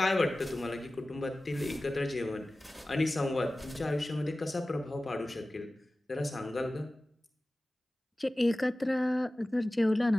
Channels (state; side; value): normal; both; correlation 0.97